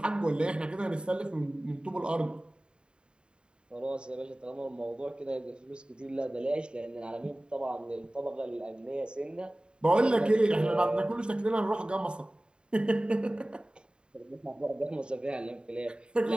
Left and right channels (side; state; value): left; late; 0.050 ms